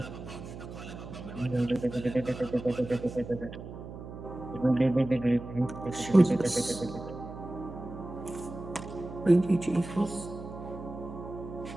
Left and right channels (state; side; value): noise; right; hum, 11 dB below the sound